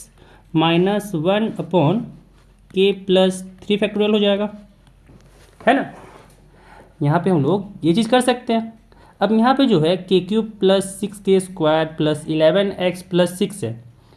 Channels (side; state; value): both; identical; correlation 1.00